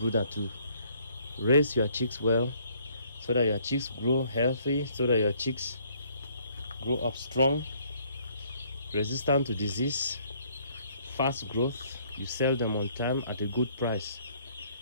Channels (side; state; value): both; inverted; correlation -0.64